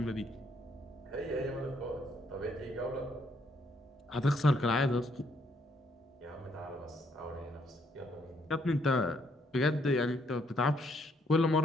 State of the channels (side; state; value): both; normal; correlation 0.70